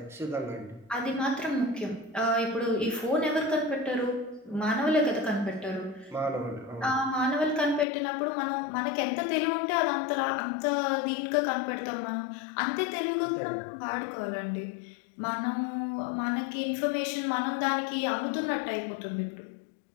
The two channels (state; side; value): drops out; right; at 7.9 s